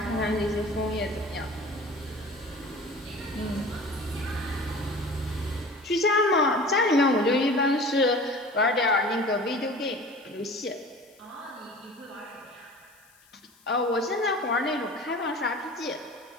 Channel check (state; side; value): noise; left; hiss, 29 dB below the sound